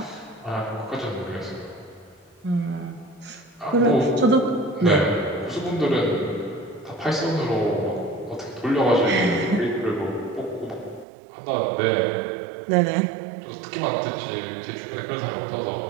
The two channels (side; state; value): left; drops out; at 11.1 s